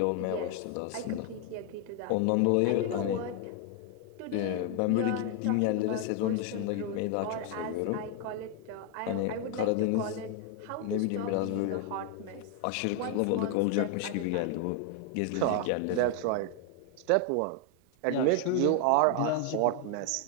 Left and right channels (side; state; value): both; different; correlation 0.01